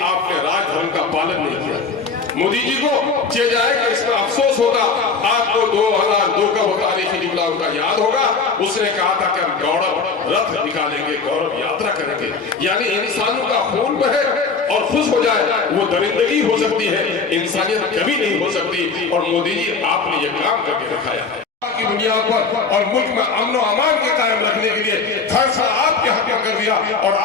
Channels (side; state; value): right; quieter; 4.7 dB